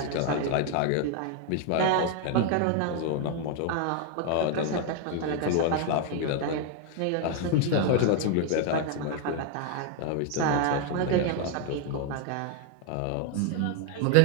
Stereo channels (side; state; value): both; different; correlation 0.01